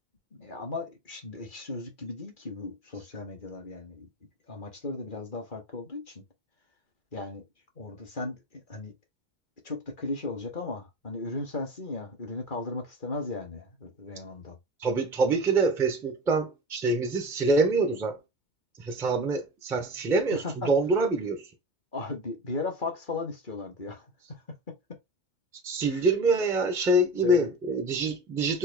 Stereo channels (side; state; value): right; late; 2.2 ms